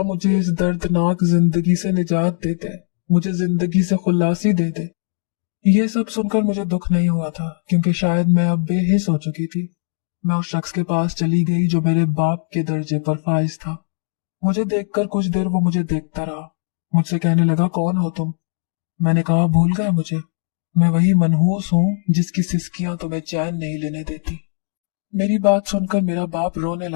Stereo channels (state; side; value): silent; right; digital silence